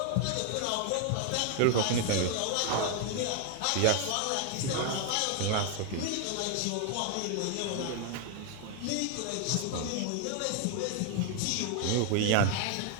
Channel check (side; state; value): both; different; correlation 0.00